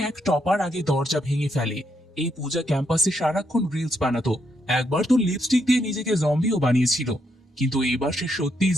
এক টপার আগে দরজা ভেঙে ফেলে। এই পূজা ক্যাম্পাসে সারাক্ষণ রিলস বানাতো। একবার তো লিপস্টিক দিয়ে নিজেকে জম্বিও বানিয়েছিল, কিন্তু এবার সে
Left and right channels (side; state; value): both; normal; correlation 0.78